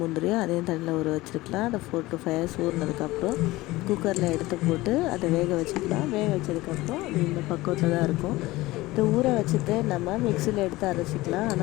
முந்திரியும் அதையும் தண்ணியில் ஊற வச்சுருக்கலாம். அதை 4 to 5 hours ஊறினதுக்கப்புறம் குக்கரில் எடுத்து போட்டு அதை வேக வச்சுக்கலாம். வேக வச்சதுக்கப்புறம் அது இந்த பக்குவத்தில் தான் இருக்கும். இதை ஊற வச்சுட்டு நம்ம மிக்சியில் எடுத்து அரைச்சிக்கலாம்.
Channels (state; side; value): quieter; right; 19.2 dB